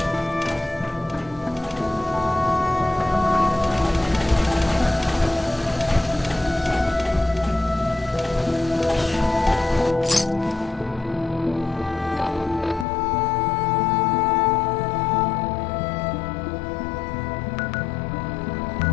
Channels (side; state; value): right; drops out; at 12.9 s